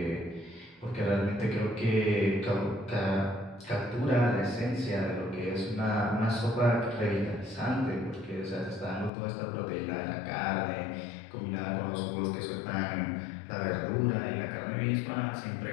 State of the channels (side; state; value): right; drops out; at 9.1 s